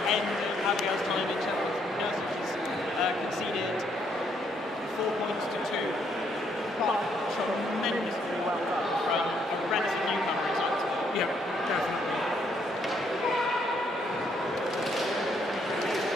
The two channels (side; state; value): both; normal; correlation 0.71